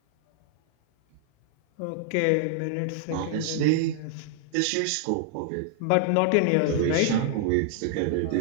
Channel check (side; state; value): both; different; correlation -0.01